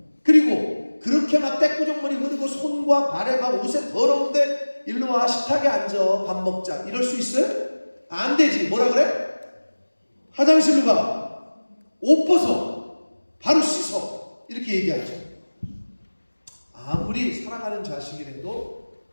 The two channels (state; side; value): inverted; both; correlation -1.00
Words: 그리고 그렇게 막 떼꾸정물이 흐르고 손과 발에 막 옷에 더러운데 일로 와, 식탁에 앉아, 밥 먹자, 이럴 수 있어요? 안 되지. 뭐라 그래? 화장실로 가, 옷 벗어, 바로 씻어, 이렇게 얘기하죠. 아무리 사랑하는 자식이라도